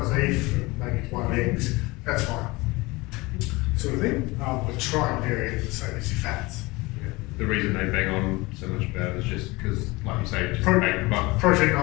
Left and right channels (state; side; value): quieter; right; 22.8 dB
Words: beef and maybe one of eggs, that's fine. sort of thing, but try and vary it the same as your fats. Yeah. The reason they bang on so much about it is just because, like you say, just Protein